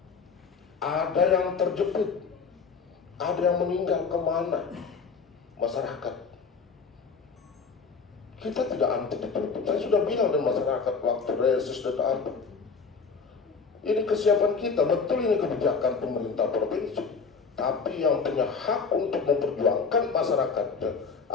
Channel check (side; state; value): right; quieter; 5.1 dB